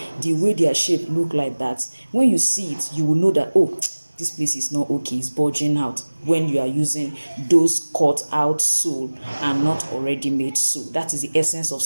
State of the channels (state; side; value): inverted; both; correlation -1.00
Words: the way their shape look like that. When you see it, you will know that, oh, this place is not okay, it's bulging out, when you are using those cut out sole and not already made sole. That is the essence of